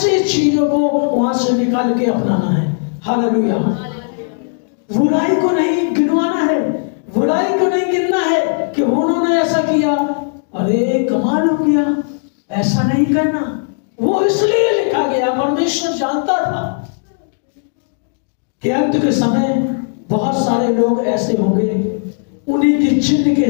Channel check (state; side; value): silent; right; digital silence